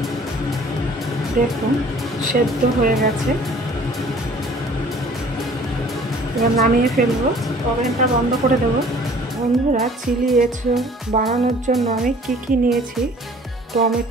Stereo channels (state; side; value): normal; both; correlation 0.52